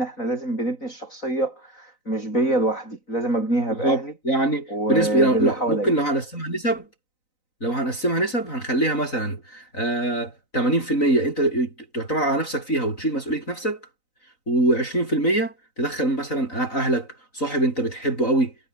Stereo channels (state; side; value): late; right; 3.9 ms